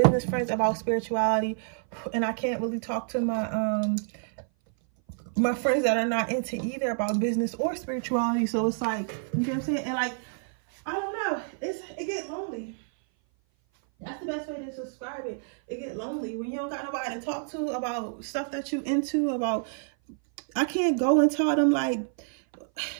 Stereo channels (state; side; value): silent; left; 57 dB below the other